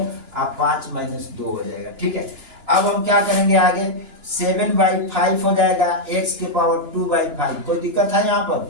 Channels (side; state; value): left; late; 2.9 ms